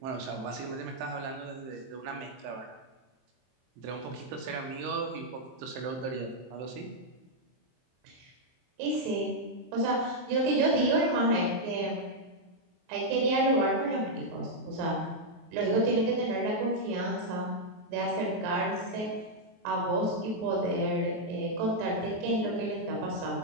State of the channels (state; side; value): late; left; 23 ms